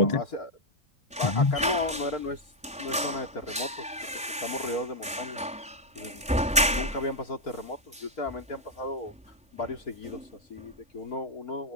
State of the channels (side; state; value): both; normal; correlation -0.02